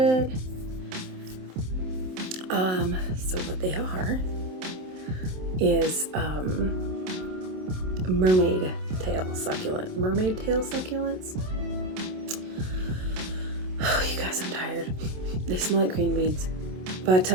So what they are is mermaid tail succulent. Mermaid tail succulents. Oh, you guys, I'm tired. They smell like green beans. But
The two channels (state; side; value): late; left; 27 ms